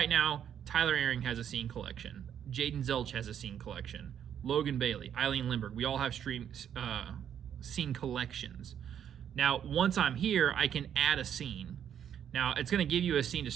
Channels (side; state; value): left; quieter; 9.2 dB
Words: now, Tyler Ehring has a scene collection. Jaden Zelch has a scene collection. Logan Bailey, Eileen Lindbergh, we all have scene collections. Now, once I'm here, I can add a scene. Now, it's going to give you a scene to